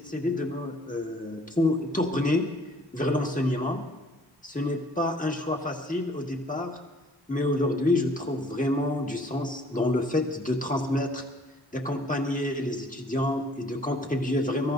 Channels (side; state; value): both; normal; correlation 0.57